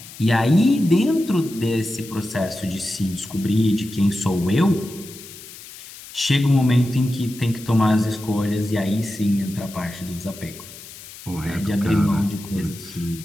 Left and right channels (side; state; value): left; noise; hiss, 16 dB below the sound